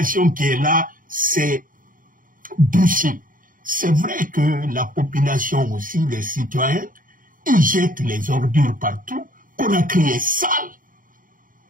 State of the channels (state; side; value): late; left; 0.40 ms